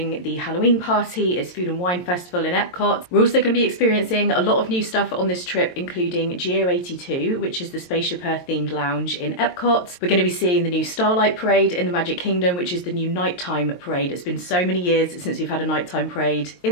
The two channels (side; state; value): right; late; 22 ms